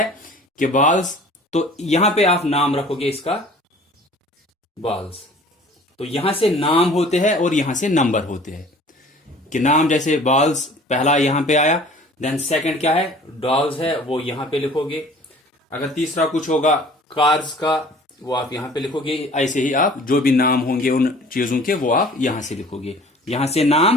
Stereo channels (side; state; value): both; normal; correlation 0.48